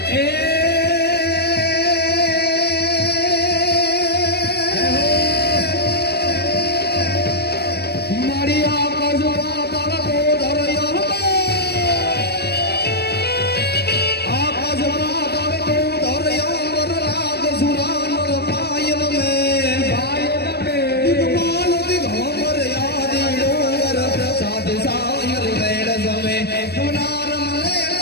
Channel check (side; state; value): right; late; 0.47 ms